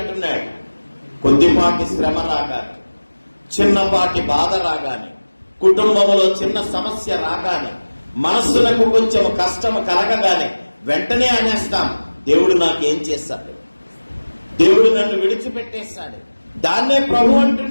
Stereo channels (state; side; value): inverted; both; correlation -1.00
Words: కొద్దిపాటి శ్రమ రాగానే, చిన్నపాటి బాధ రాగానే, కుటుంబంలో చిన్న సమస్య రాగానే, మనస్సులకు కొంచెం కష్టం కలగగానే వెంటనే అనేస్తాం, దేవుడు నాకేం చేశాడు, దేవుడు నన్ను విడిచిపెట్టేశాడు. దాన్నే ప్రభు